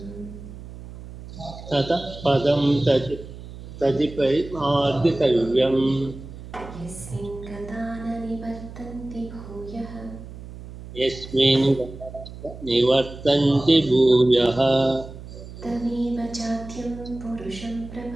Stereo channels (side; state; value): right; noise; hum, 14 dB below the sound